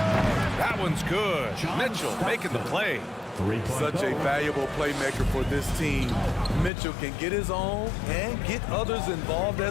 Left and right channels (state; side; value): drops out; right; at 6.7 s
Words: one's good. Mitchell making the play. Such a valuable playmaker for this team. Mitchell can get his own and get others involved